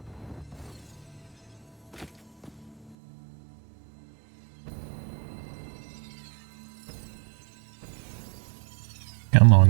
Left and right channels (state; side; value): drops out; left; at 3.0 s